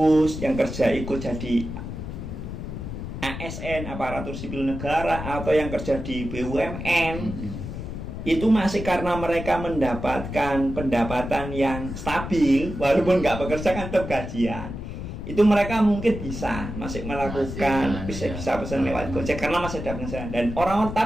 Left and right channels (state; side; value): noise; left; rumble, 7 dB below the sound